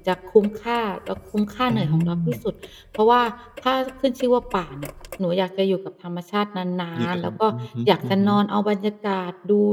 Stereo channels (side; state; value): both; identical; correlation 1.00